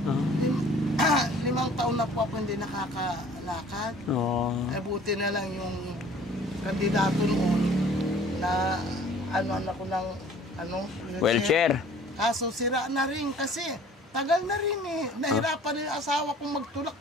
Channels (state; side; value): normal; both; correlation 0.51